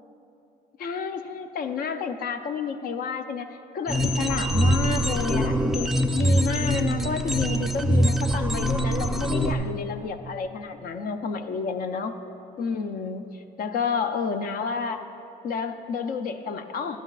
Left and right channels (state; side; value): normal; both; correlation 0.63